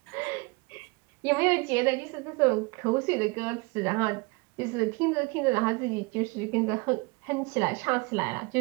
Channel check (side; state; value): left; quieter; 27.9 dB